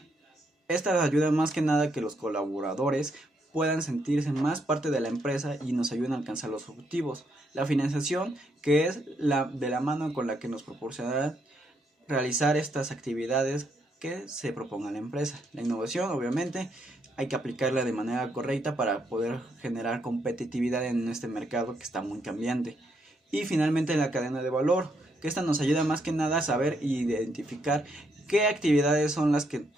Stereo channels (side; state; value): both; normal; correlation 0.76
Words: Esta ayuda más que nada a que los colaboradores puedan sentirse más parte de la empresa y nos ayudan a alcanzar los objetivos. La financiación, que es de la mano con la que nos proporcionará realizar estas actividades que se proponga la empresa. La innovación, obviamente, hay que aplicarla de manera correcta para poder generar competitividad en este mercado que está muy cambiante. Y finalmente la cadena de valor, que esta nos ayuda más que nada a saber e identificar qué actividades son las que